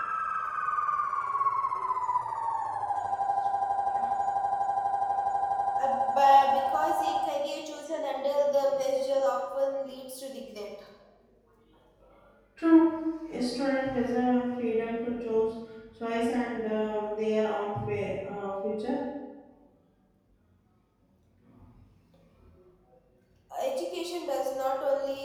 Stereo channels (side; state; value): both; identical; correlation 1.00